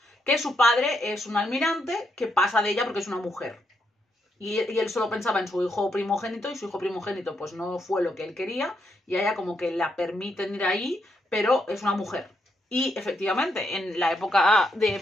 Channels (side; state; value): both; normal; correlation 0.79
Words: que su padre es un almirante que pasa de ella porque es una mujer. Y él solo pensaba en su hijo primogénito y su hijo primogénito pues no fue lo que él quería y a ella como que la permiten ir ahí, pero es una mujer. Y efectivamente, en la época de